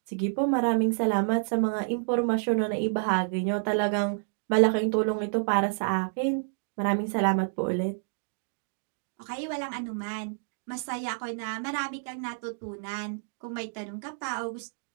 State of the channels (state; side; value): silent; left; digital silence